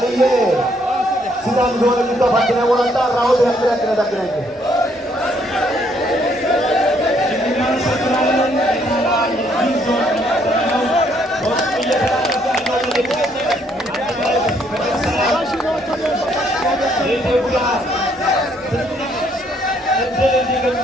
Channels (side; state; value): both; normal; correlation 0.69